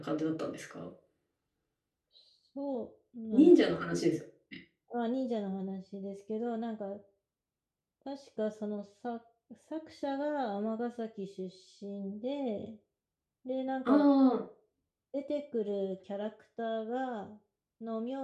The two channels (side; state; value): both; identical; correlation 1.00